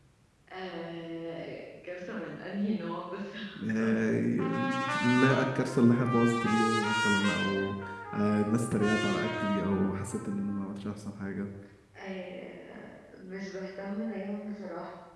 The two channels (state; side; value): identical; both; correlation 1.00